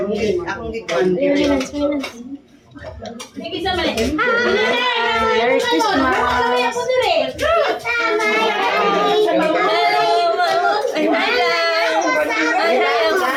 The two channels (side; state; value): both; identical; correlation 1.00